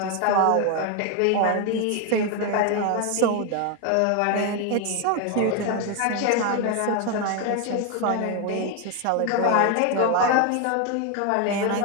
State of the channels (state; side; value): different; both; correlation 0.01